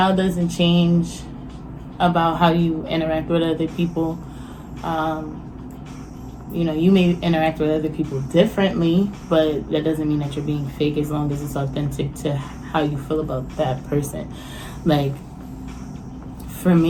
doesn't change about how you interact with other people. You may interact with other people differently, but that doesn't mean that you're being fake, as long as it's authentic to how you feel about that person. Like, for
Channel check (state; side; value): identical; both; correlation 1.00